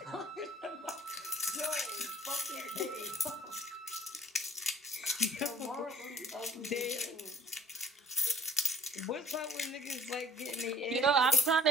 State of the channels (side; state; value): both; normal; correlation 0.51